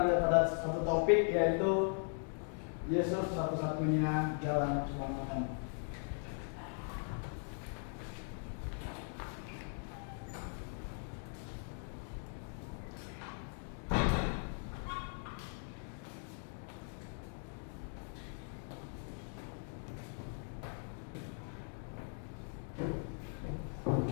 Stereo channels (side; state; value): right; silent; 52 dB below the other